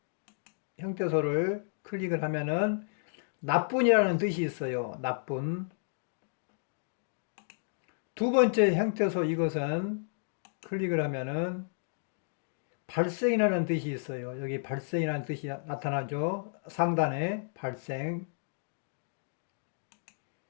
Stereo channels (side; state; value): right; silent; digital silence